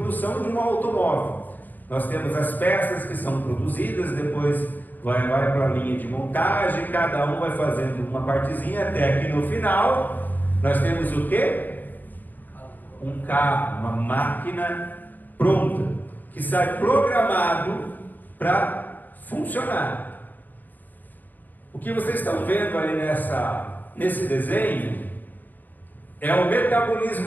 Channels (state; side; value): late; right; 0.087 ms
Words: de um automóvel. Nós temos as peças que são produzidas, depois vai para a linha de montagem, cada um vai fazendo uma partezinha, até que no final nós temos o quê? Um carro, uma máquina pronta, que sai programado para funcionar. O que vocês estão vendo ali nesse desenho é o